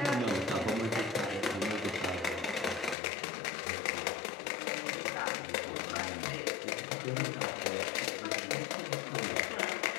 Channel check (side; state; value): right; drops out; at 3.0 s